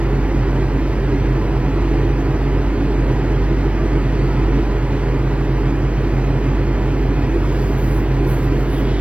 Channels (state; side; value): late; left; 0.061 ms